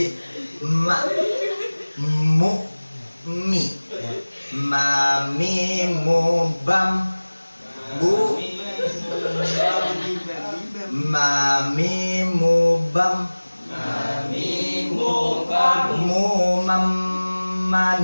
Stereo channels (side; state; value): both; inverted; correlation -1.00